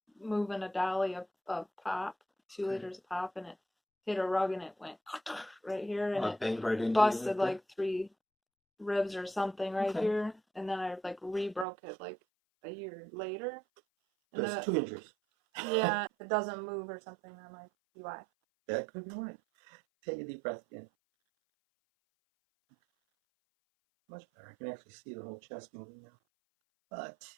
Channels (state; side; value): drops out; left; at 11.7 s